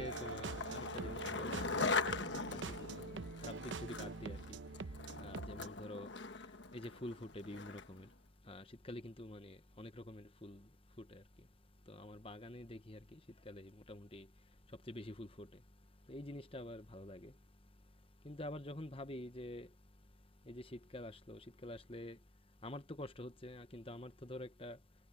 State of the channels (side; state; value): both; normal; correlation 0.16